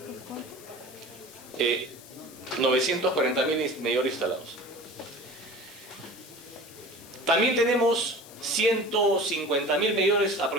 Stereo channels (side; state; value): left; noise; hiss, 19 dB below the sound